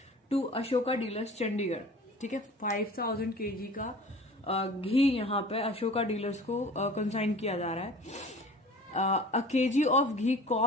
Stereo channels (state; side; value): normal; both; correlation 0.42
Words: टू अशोका डीलर्स चंडीगढ़। ठीक है, 5,000 kg का घी यहाँ पे अशोका डीलर्स को कंसाइन किया जा रहा है। A kg of ghee